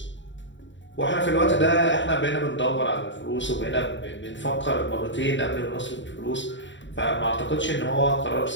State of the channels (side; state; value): right; late; 0.54 ms